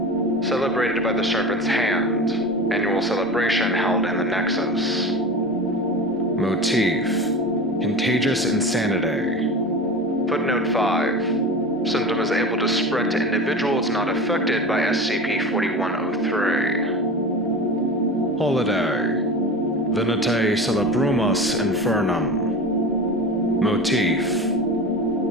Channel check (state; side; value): normal; both; correlation 0.31